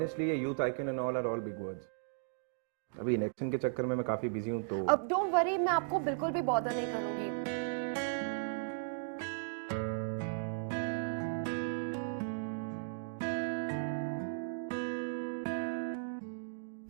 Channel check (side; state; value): left; silent; digital silence